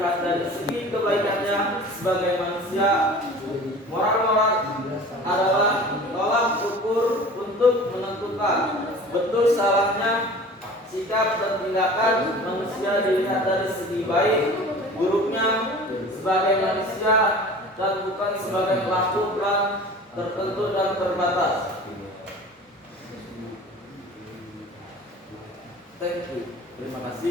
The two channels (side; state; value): both; normal; correlation 0.41